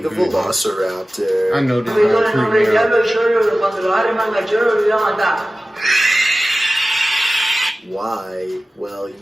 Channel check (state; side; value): normal; both; correlation 0.96